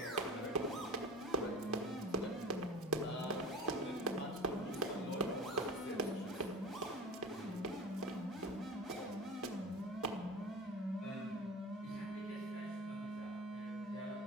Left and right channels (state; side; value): normal; both; correlation 0.34